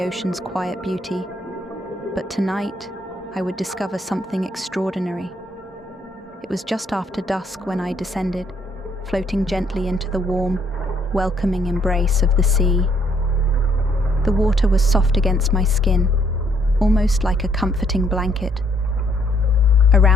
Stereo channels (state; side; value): normal; both; correlation 0.68